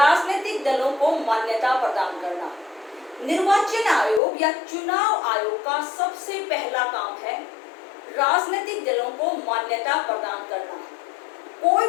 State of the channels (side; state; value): right; drops out; at 4.2 s